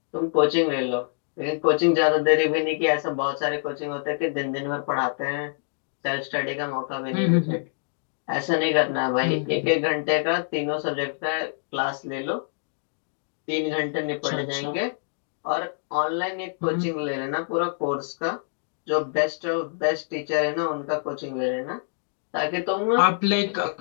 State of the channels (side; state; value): right; silent; digital silence